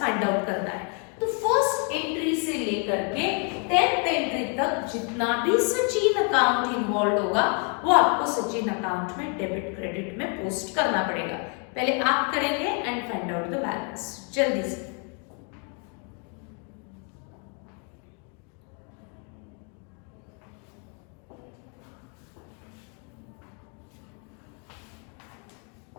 आउट करना है। तो फर्स्ट एंट्री से लेकर के 10th एंट्री तक जितना भी सचिन अकाउंट इन्वॉल्व होगा वो आपको सचिन अकाउंट में डेबिट क्रेडिट में पोस्ट करना पड़ेगा। पहले आप करेंगे and find out the balance जल्दी से।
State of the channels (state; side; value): quieter; right; 37.1 dB